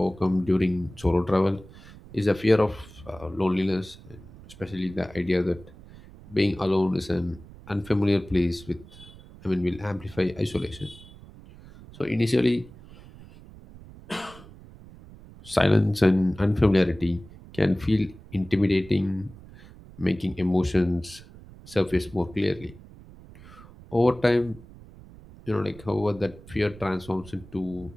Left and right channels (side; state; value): right; noise; rumble, 20 dB below the sound